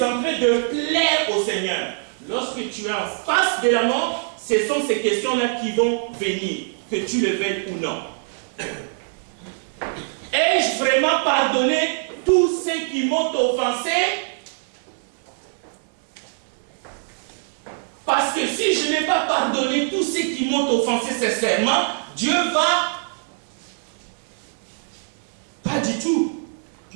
en train de plaire au Seigneur? Lorsque tu es en face de la mort, ce sont ces questions-là qui vont venir, que tu le veuilles ou non. Ai-je vraiment pardonné tous ceux qui m'ont offensé? Parce que si je n'ai pas pardonné tous ceux qui m'ont offensé sincèrement, Dieu va pas du tout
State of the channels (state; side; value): silent; left; 58 dB below the other